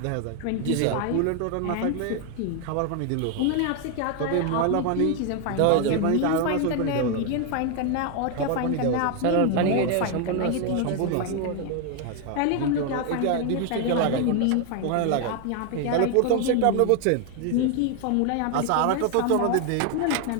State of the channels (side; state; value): both; different; correlation 0.01